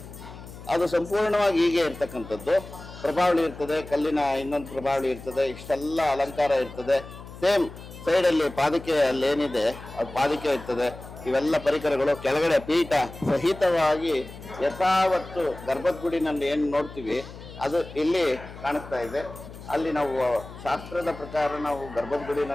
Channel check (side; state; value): left; noise; hum, 15 dB below the sound